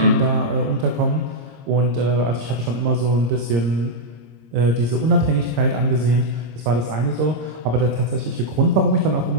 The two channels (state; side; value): late; left; 26 ms